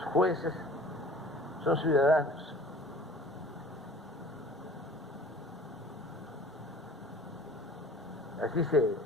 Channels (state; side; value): normal; both; correlation 0.46